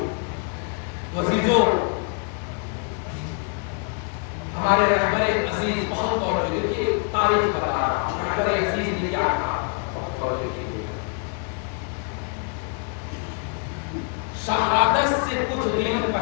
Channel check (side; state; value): right; quieter; 38.5 dB